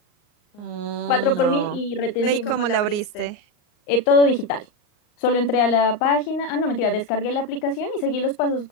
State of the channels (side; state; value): right; late; 39 ms